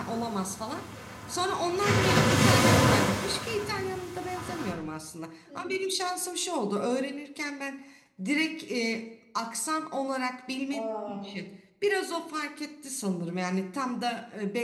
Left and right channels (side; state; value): both; identical; correlation 1.00